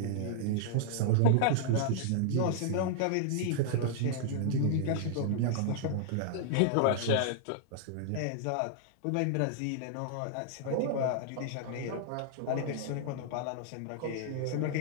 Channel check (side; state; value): both; different; correlation -0.01